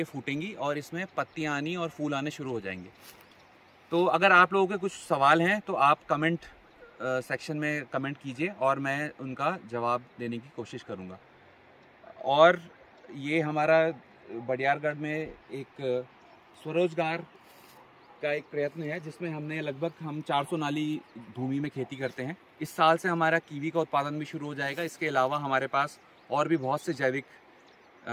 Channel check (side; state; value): both; identical; correlation 1.00